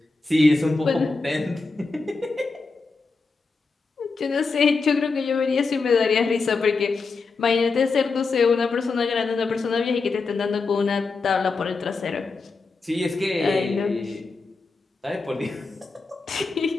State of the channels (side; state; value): right; quieter; 4.2 dB